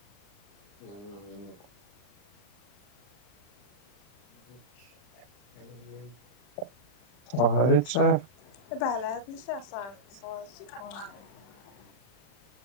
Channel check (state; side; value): late; right; 39 ms